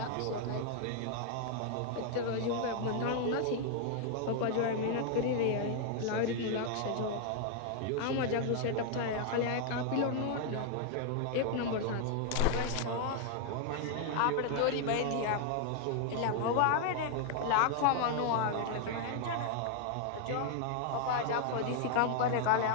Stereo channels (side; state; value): both; different; correlation 0.00